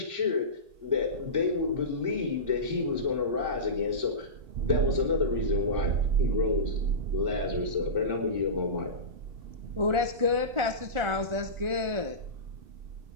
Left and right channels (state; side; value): late; left; 1.4 ms